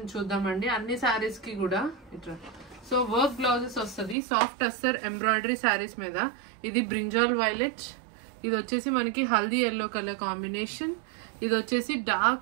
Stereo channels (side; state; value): left; drops out; at 4.2 s